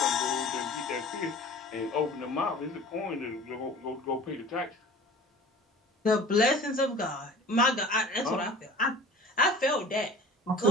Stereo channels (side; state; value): both; normal; correlation 0.42